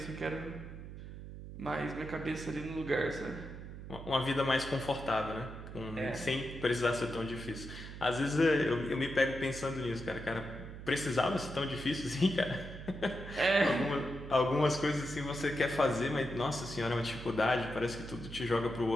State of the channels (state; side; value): noise; right; hum, 11 dB below the sound